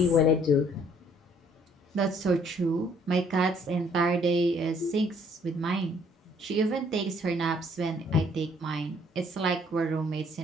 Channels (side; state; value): both; normal; correlation 0.62